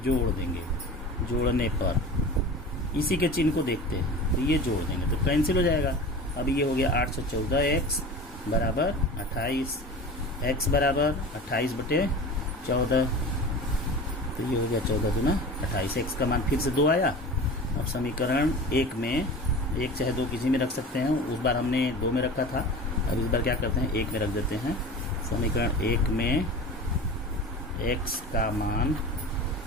जोड़ देंगे। जोड़ने पर इसी के चिन्ह को देखते हैं तो ये जोड़ देंगे तो कैंसिल हो जाएगा। अब ये हो गया 814x बराबर 28, x बराबर 28/14। तो ये हो गया 14 दूना 28। x का मान फिर से 2 आया। अब समीकरण 1 में 1 चाहे 2 किसी में रख सकते हैं, उस बार हमने 2 में रखा था, अब इस बार क्या करते हैं 1 में रख देते हैं। समीकरण 1 में x का मान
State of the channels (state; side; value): normal; both; correlation 0.35